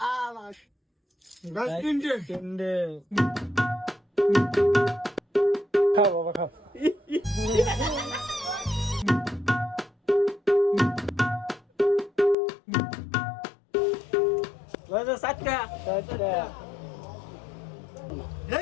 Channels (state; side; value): drops out; right; at 12.4 s